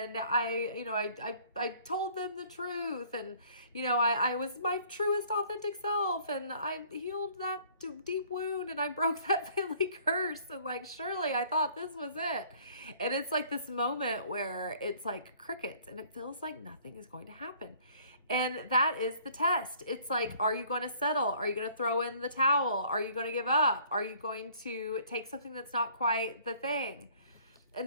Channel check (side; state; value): both; inverted; correlation -0.56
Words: I told them the truth, and I was my truest authentic self, and I healed that deep wound, and I broke that family curse, and like surely I thought this was it. And it's like this moment where it's like crickets, and it feels like nothing is going to happen. And that is the test. It's like, are you going to settle? Are you going to throw in the towel? Are you going to give up? Are you going to take something that's not quite the thing? And